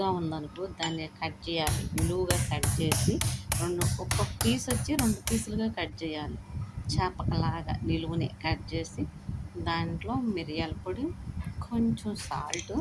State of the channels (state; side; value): identical; both; correlation 1.00